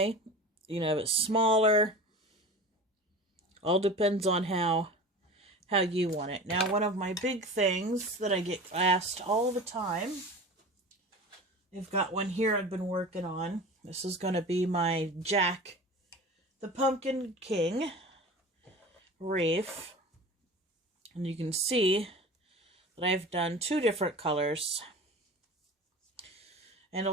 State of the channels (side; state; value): both; normal; correlation 0.35